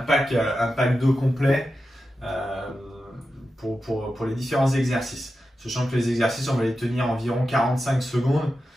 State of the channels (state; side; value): normal; both; correlation 0.91